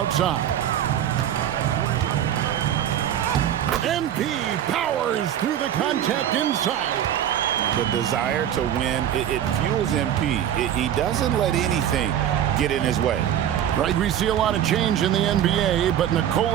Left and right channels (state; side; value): quieter; left; 10.4 dB